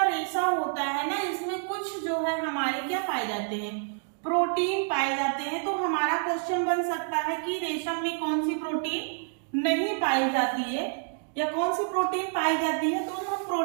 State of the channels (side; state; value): left; silent; 59 dB below the other